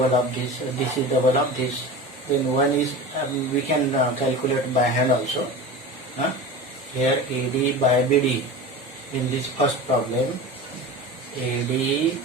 of this. This is double of this. Then one is we can calculate by hand also. Here AD by BD. In this first problem, AD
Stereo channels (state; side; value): normal; both; correlation 0.31